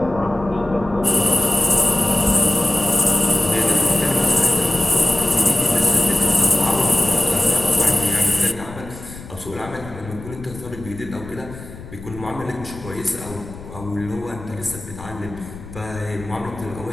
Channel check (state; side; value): noise; left; rumble, 14 dB below the sound